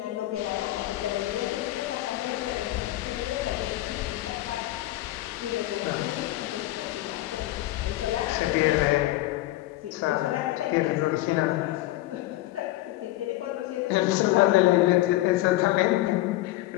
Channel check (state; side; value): quieter; right; 16.6 dB